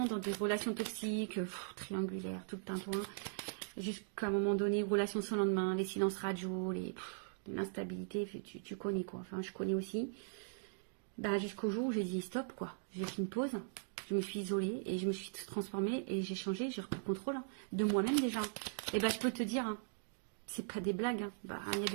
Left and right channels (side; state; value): left; silent; digital silence